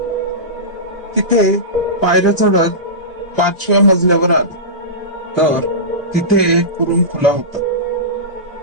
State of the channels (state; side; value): normal; both; correlation -0.19